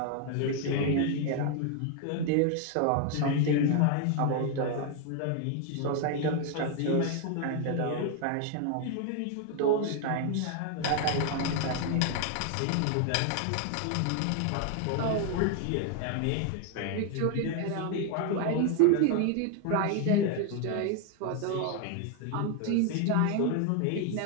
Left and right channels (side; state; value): both; different; correlation 0.00